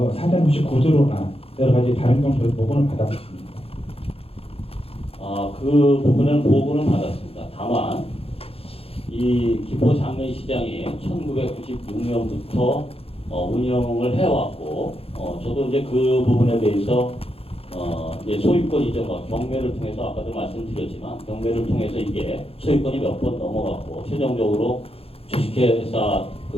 사전 혹시 구두로나 여러 가지 다른 정도의 보고는 받았습니다. 그 부분은 보고는 받았습니다. 다만 이 김포 장례시장이 1996년부터 운영을 해왔고 저도 이제 그 부분에 대해서 이제 소유권 이전과 경매를 통해서 아까도 말씀드렸지만 경매를 통해서 이게 소유권이 몇 번 넘어갔고 최종적으로 주식회사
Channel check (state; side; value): late; right; 0.28 ms